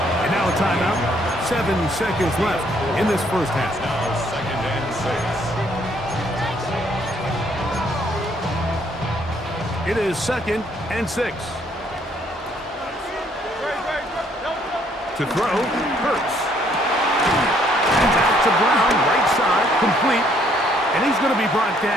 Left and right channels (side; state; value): both; normal; correlation 0.66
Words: And now a timeout. 7 seconds left in this 1st half. Now 2nd and 6. It is 2nd and 6. To throw, Hurts. And out to Brown, right side, complete. And he's going to be brought